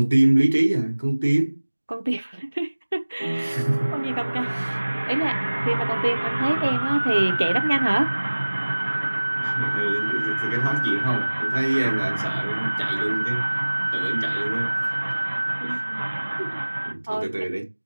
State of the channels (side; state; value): both; inverted; correlation -1.00